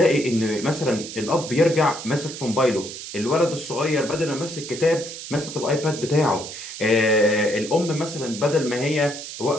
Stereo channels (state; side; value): noise; right; hiss, 10 dB below the sound